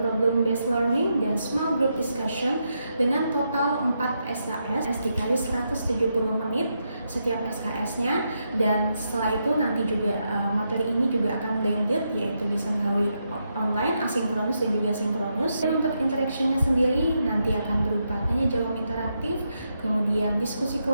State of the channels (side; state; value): both; inverted; correlation -0.83